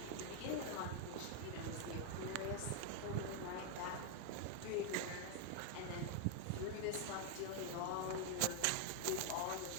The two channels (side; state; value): both; different; correlation 0.01